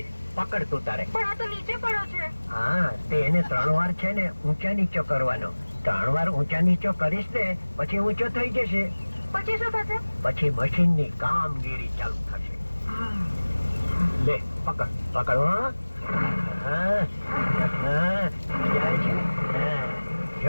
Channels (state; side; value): inverted; both; correlation -1.00